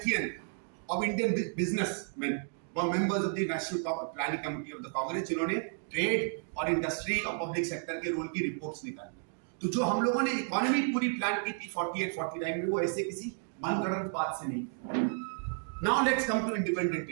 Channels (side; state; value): left; silent; 56 dB below the other